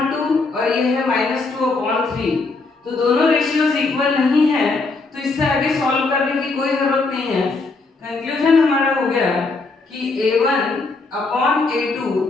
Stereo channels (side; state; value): right; quieter; 3.8 dB